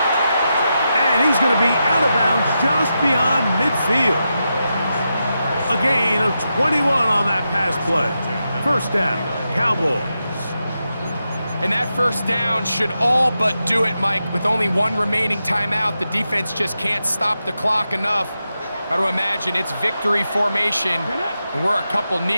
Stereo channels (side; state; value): both; inverted; correlation -0.88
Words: And he's going to be out of bounds just beyond midfield. A gain of 21 on that pass play. First down, Cowboys. And that first down should all but do it, Mike. With only one remaining timeout, the defense just can't stop the clock enough. Got to imagine it's victory formation, and we're a couple